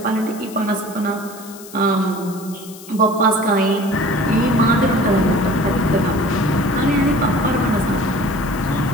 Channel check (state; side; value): noise; left; hiss, 18 dB below the sound